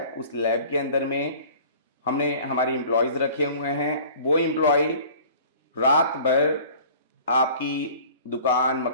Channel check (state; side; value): inverted; both; correlation -0.47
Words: उस लैब के अंदर में हमने हमारे एम्प्लॉयज़ रखे हुए हैं। वो एम्प्लॉय रात भर आपकी दुकान,